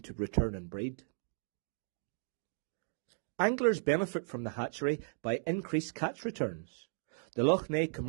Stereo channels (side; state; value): left; silent; digital silence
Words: return and breed. Anglers benefit from the hatchery by increased catch returns. The Loch Ness